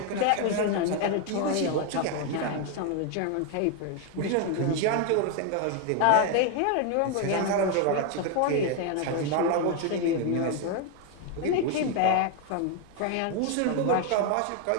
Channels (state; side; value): different; both; correlation 0.01